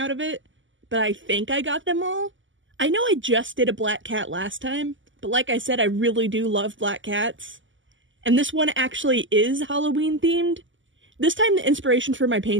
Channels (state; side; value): late; left; 0.55 ms